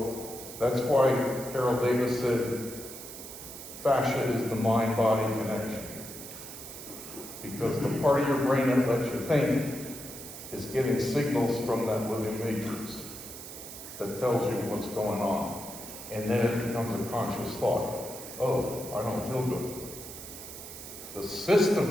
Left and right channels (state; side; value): noise; right; hiss, 12 dB below the sound